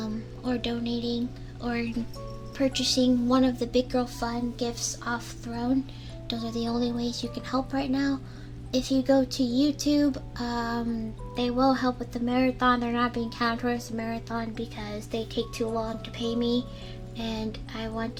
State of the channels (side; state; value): both; identical; correlation 1.00